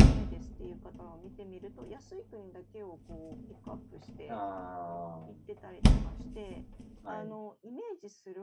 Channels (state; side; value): identical; both; correlation 1.00